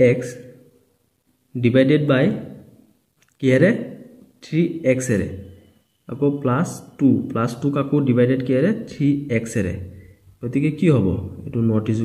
divided by কিহেৰে 3x এৰে আকৌ প্লাস 2 কাকো ডিভাইডেড কিহেৰে 3x এৰে গতিকে কি হ'ব এটো নট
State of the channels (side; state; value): both; identical; correlation 1.00